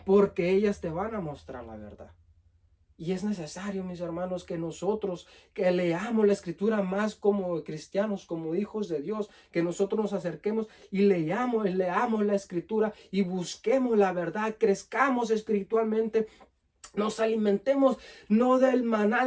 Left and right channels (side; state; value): both; identical; correlation 1.00